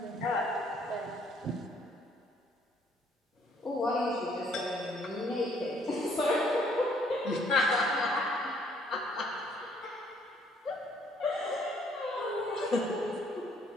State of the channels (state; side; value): normal; both; correlation 0.64